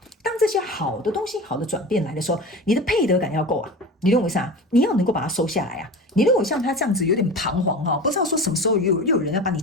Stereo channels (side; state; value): both; normal; correlation 0.32